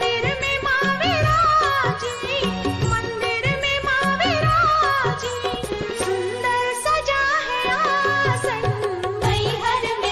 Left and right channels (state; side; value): identical; both; correlation 1.00